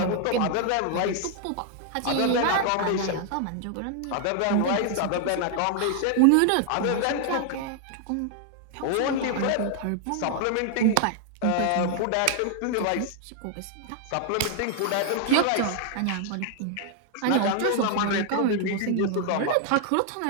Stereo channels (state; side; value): different; both; correlation 0.00